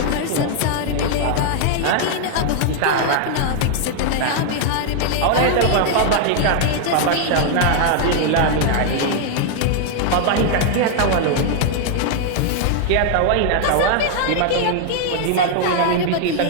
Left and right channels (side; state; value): both; different; correlation 0.00